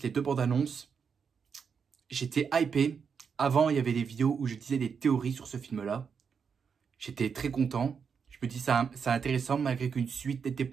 les 2 bandes annonces. J'étais hypé. Avant, il y avait des vidéos où je disais des théories sur ce film-là. J'étais très content. Je me dis c'est intéressant malgré qu'une suite n'était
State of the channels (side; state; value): left; quieter; 6.3 dB